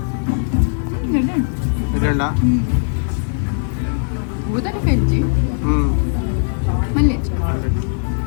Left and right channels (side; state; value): right; silent; digital silence